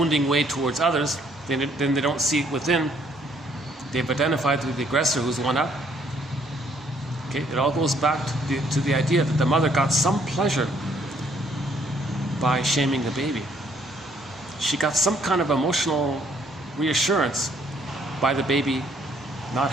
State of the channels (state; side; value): normal; both; correlation 0.66